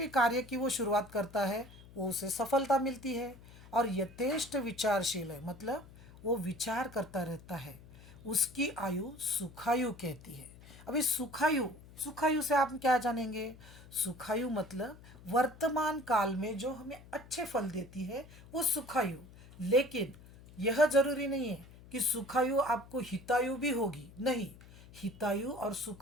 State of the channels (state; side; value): noise; left; hum, 20 dB below the sound